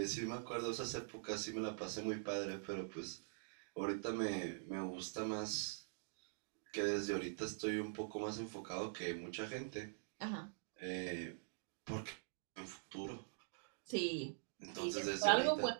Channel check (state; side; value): silent; left; digital silence